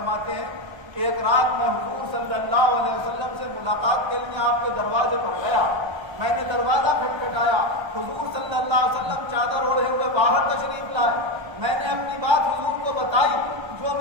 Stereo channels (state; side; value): late; left; 1.3 ms